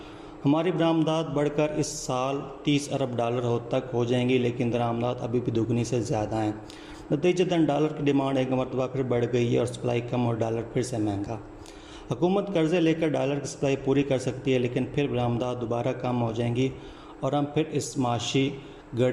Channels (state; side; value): identical; both; correlation 1.00